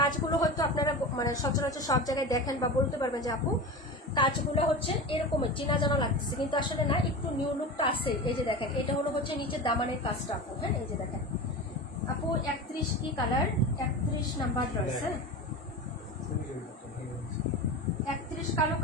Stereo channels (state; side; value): normal; both; correlation 0.28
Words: হয়তো আপনারা মানে সচরাচর সব জায়গায় দেখেন বা বলতে পারবেন যে আপু কাজগুলো হচ্ছে এরকমের চেনা জানা লাগতেছে, কিন্তু আসলে না, একটু নিউ লুকটা আছে। এই যে দেখেন এটা হলো হচ্ছে নিচের দামানের কাজটা আপু। হ্যাঁ এই যে দেখেন আপু 31 কি কালার? 31 number dress. হ্যাঁ 31 কালো